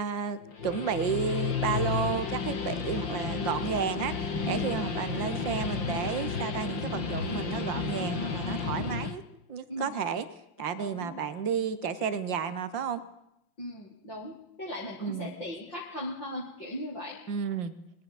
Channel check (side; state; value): right; late; 5.7 ms